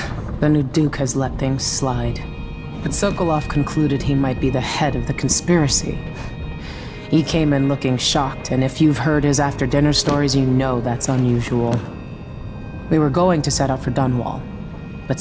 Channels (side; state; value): both; identical; correlation 1.00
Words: The new Duke has let things slide. But Sokolov concluded he might be the head of the conspiracy. He came in looking shocked, and if you've heard his after-dinner stories, you know that's unusual. We were going to set out for Dunwall, but